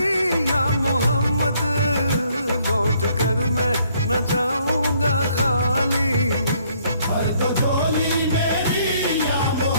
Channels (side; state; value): both; inverted; correlation -0.66